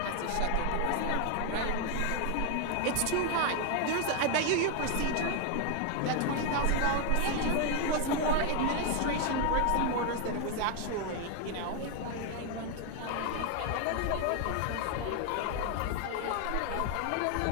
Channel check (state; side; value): different; both; correlation 0.01